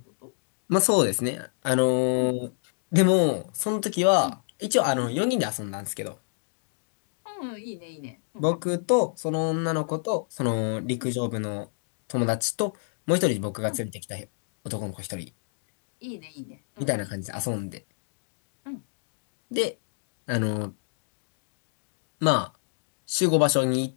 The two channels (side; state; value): right; silent; digital silence